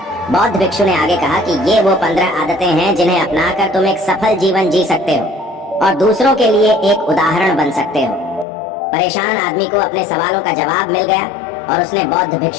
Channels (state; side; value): drops out; right; at 8.5 s